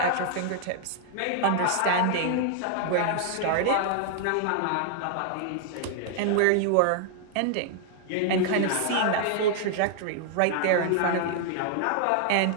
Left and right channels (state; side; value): different; both; correlation 0.00